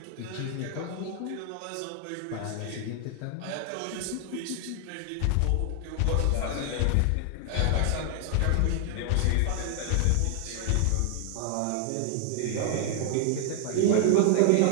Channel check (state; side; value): different; both; correlation 0.00